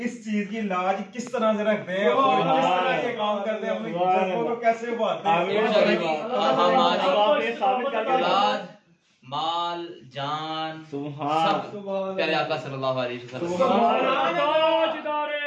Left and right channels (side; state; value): both; identical; correlation 1.00